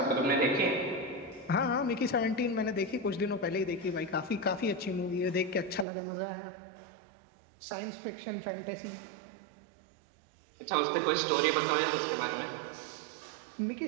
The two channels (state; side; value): drops out; left; at 5.9 s